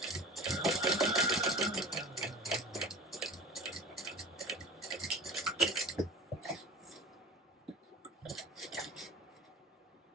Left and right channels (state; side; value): normal; both; correlation 0.39